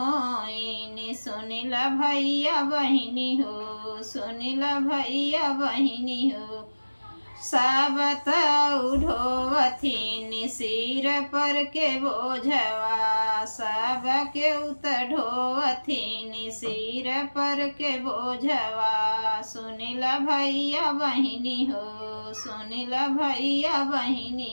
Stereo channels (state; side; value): inverted; both; correlation -1.00